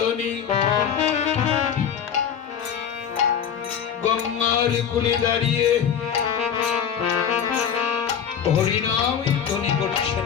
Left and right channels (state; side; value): quieter; right; 8.1 dB